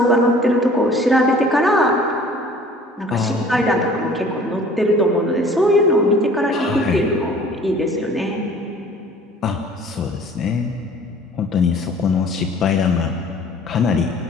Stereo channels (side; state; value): both; normal; correlation 0.50